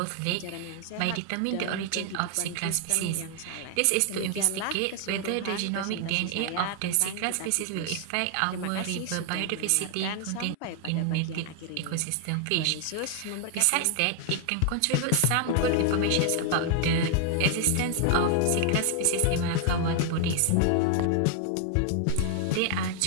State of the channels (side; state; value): both; different; correlation 0.00